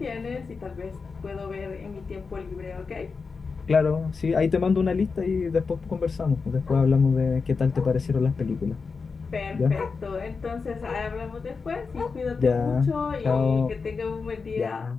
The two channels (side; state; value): right; quieter; 4.8 dB